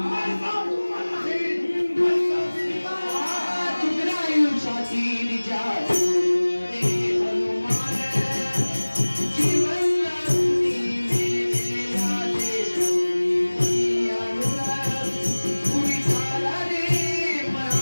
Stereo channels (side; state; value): both; inverted; correlation -1.00